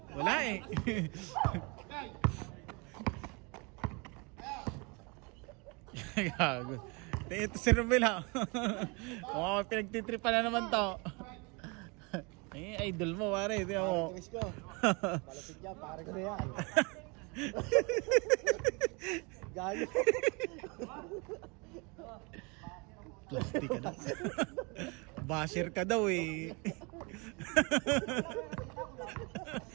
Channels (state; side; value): quieter; left; 30.1 dB